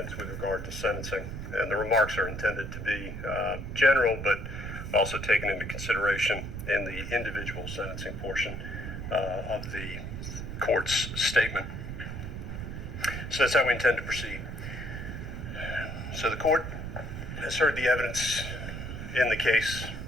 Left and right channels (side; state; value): right; noise; rumble, 7 dB below the sound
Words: with regard to sentencing. And the remarks are intended to be general, but also taken into consideration in the individual sentencing portion of the court's statement. So that's how we intend to proceed. So the court has heard the evidence in the case,